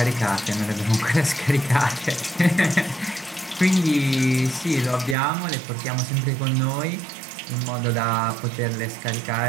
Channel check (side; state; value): left; drops out; at 5.2 s